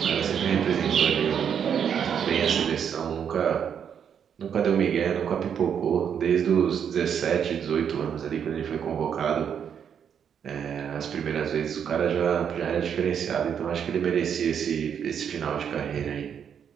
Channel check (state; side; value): quieter; left; 8.0 dB